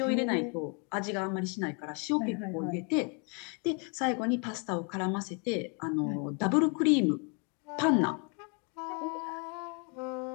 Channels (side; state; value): right; quieter; 35.7 dB